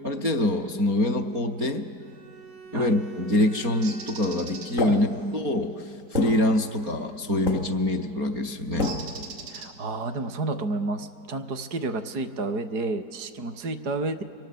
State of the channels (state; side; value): late; left; 4.3 ms